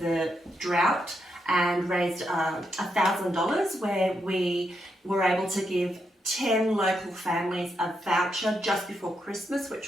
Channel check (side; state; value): both; normal; correlation 0.82